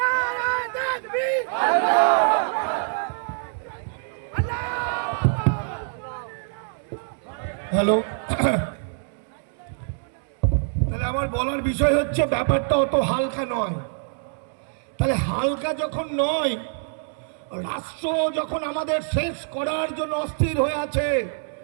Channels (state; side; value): silent; left; digital silence